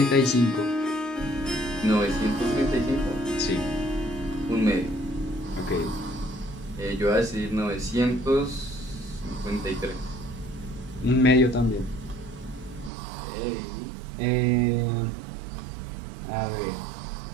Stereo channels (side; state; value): left; drops out; at 12.9 s